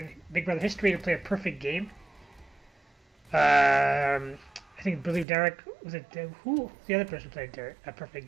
Big Brother history to play a perfect game. I believe Derek was it. Who the other person played a perfect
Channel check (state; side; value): drops out; left; at 5.2 s